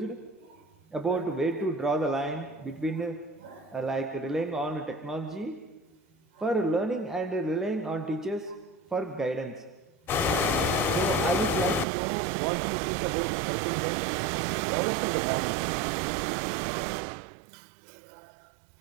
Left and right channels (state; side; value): drops out; left; at 11.9 s